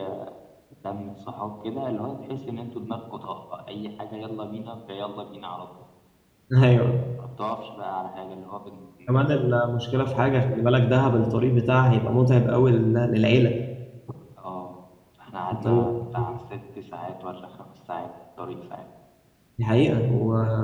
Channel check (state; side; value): identical; both; correlation 1.00